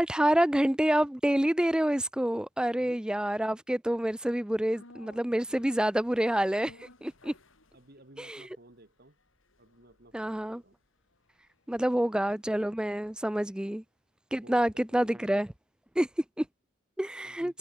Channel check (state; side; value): normal; both; correlation 0.97